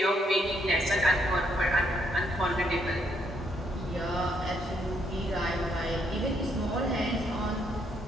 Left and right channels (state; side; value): normal; both; correlation 0.73